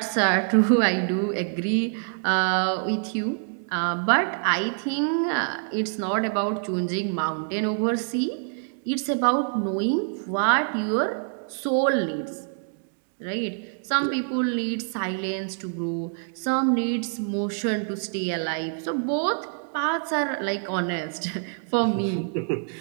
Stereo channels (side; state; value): left; silent; digital silence